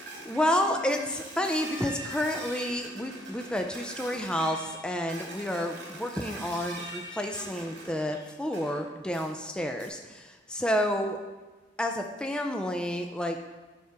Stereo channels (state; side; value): normal; both; correlation 0.69